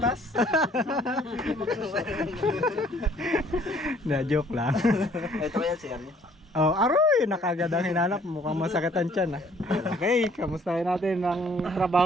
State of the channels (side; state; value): both; normal; correlation 0.59